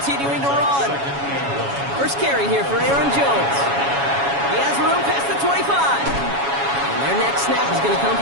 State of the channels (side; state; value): left; late; 7.2 ms